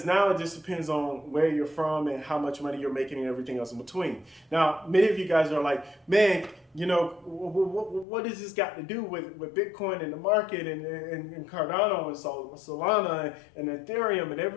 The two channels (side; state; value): right; drops out; at 8.1 s